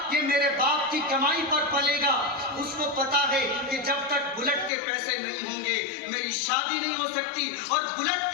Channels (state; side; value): drops out; right; at 4.7 s